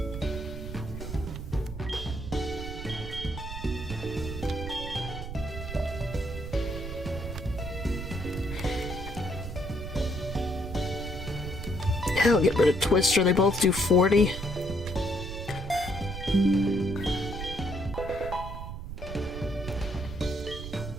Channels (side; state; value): right; noise; rumble, 8 dB below the sound